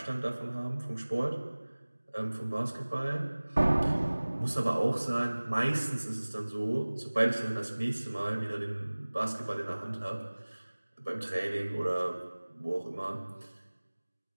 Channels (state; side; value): inverted; both; correlation -1.00